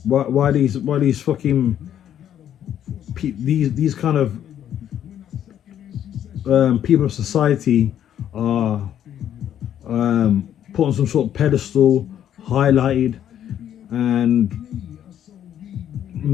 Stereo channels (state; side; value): quieter; right; 10.3 dB